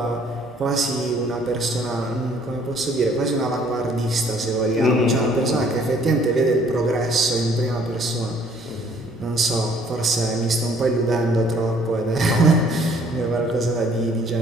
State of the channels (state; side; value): normal; both; correlation 0.60